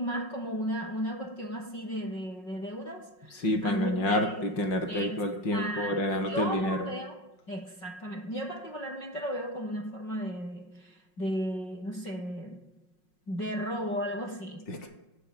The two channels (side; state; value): right; late; 5.5 ms